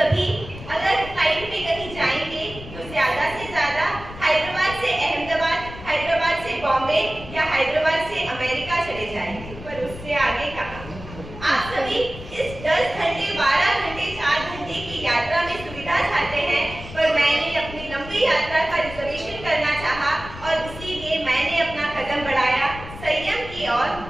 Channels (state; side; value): noise; left; rumble, 13 dB below the sound